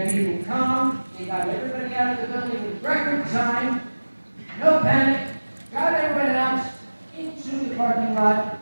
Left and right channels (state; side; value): inverted; both; correlation -1.00